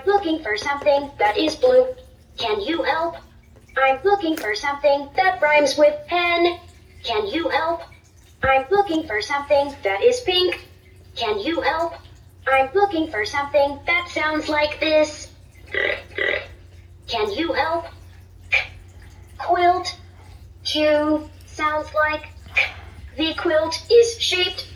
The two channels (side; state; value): both; identical; correlation 1.00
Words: looking for something that is blue. Can you help? I'm looking for something that rhymes with pen. Can you help? I'm looking for something that is pink. Can you help? I'm looking for something that sounds like this. Can you help? Quilt. Q sounds like The quilt is shaped